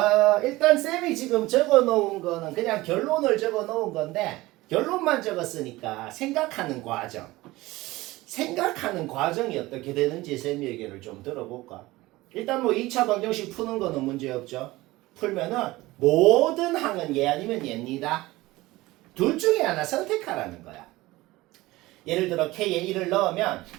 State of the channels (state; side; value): quieter; left; 19.1 dB